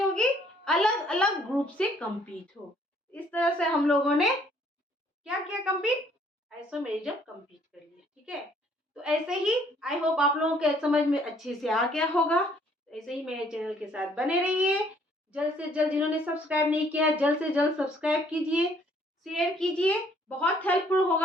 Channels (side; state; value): both; normal; correlation 0.63